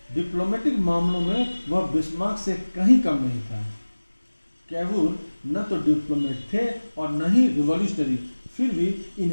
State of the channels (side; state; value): both; inverted; correlation -1.00